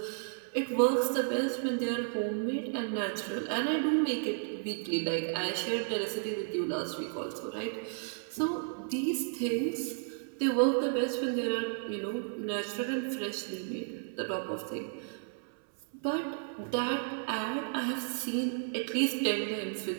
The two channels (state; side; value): silent; left; 56 dB below the other